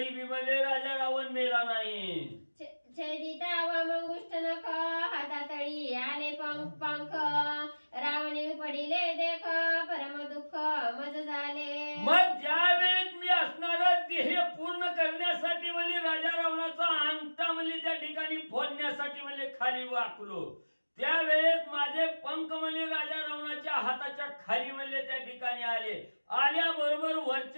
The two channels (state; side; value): inverted; both; correlation -1.00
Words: बी म्हणजे राजा रावण मेला नाही. छेदिता वामंगुष्ट नख हातातळी आले पंख रावणे पडिले देख परम दुःख मज झाले. मग ज्या वेळेस मी असणारा ध्येय पूर्ण करण्यासाठी म्हणजे राजा रावणाचा अंगठा म्हणजे त्या ठिकाणी फोडण्यासाठी म्हणजे खाली वाकलो त्यावेळेस माझे पंख म्हणले राजा रावणाच्या हाताच्या खाली म्हणले त्या ठिकाणी आल्याबरोबर